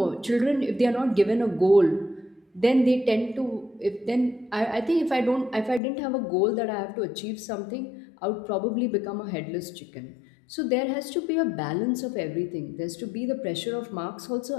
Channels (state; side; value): drops out; right; at 5.8 s